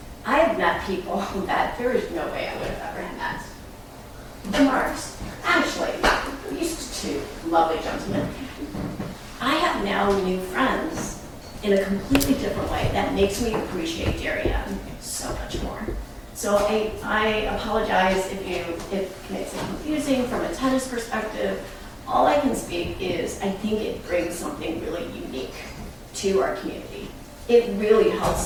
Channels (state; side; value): identical; both; correlation 1.00